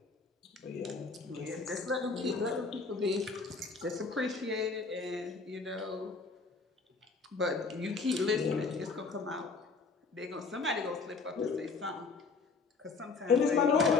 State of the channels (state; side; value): quieter; right; 4.4 dB